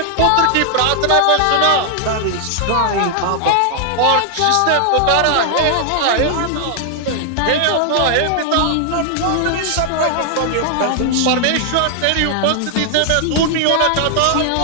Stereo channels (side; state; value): both; different; correlation 0.00